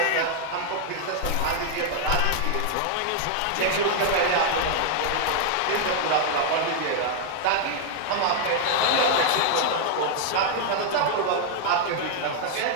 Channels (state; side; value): different; both; correlation 0.00